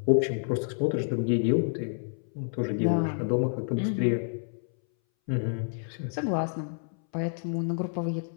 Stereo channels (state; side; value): silent; right; 59 dB below the other